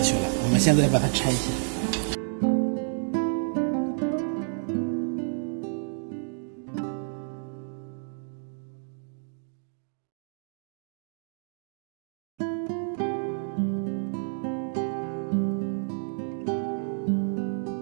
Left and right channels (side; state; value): left; silent; digital silence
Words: 去了。我们现在把它拆一下。